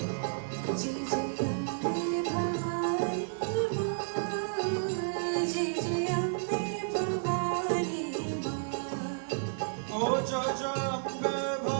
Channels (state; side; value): silent; left; digital silence